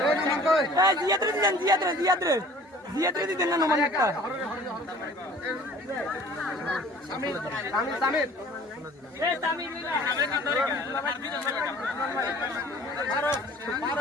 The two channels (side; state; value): both; normal; correlation 0.49